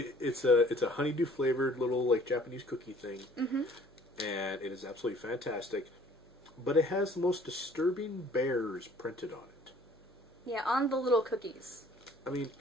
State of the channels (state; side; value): noise; right; hum, 28 dB below the sound